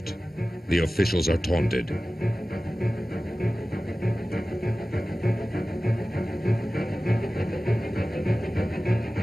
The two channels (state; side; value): normal; both; correlation 0.96